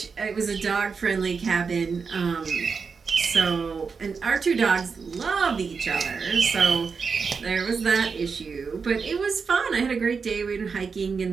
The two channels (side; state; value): left; quieter; 5.3 dB